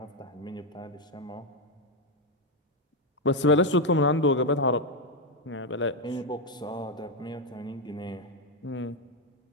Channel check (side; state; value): both; normal; correlation 0.04